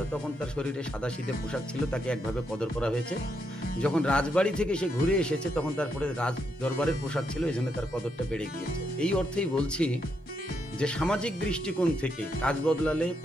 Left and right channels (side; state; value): both; normal; correlation 0.79